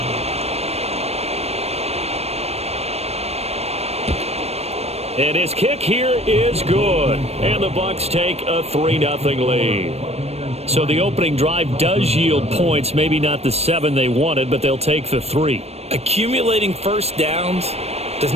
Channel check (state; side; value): late; left; 0.31 ms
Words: And his kick here is good. And the Bucs take a 3-0 lead. So the opening drive does yield points, maybe not the 7 they wanted, but they'll take the 3. Accumulating first downs does